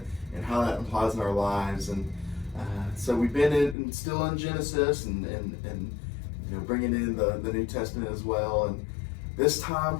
and how that applies in our lives. And so we've been still in Genesis and bringing in the New Testament as well. And this time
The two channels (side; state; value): right; drops out; at 3.8 s